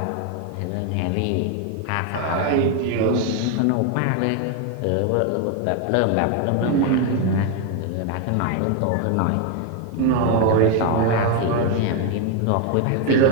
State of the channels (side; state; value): both; different; correlation 0.01